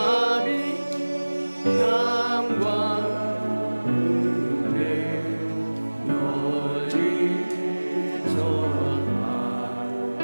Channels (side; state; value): both; inverted; correlation -1.00